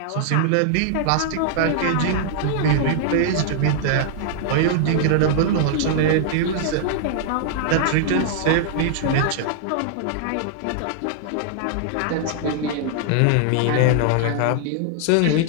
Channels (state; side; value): different; both; correlation -0.01